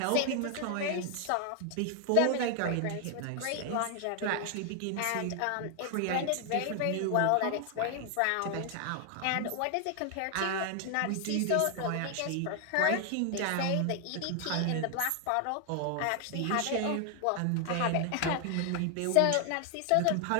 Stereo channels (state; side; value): different; both; correlation 0.00